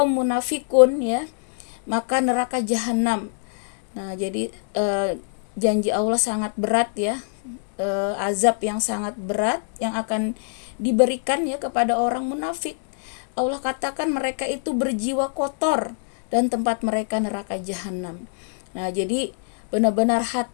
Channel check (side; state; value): right; silent; digital silence